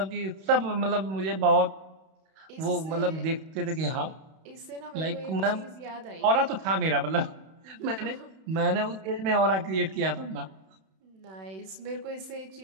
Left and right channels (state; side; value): late; left; 31 ms